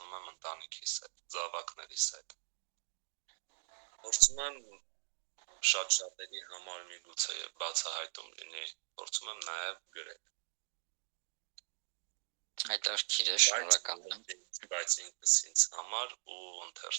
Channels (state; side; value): silent; left; 52 dB below the other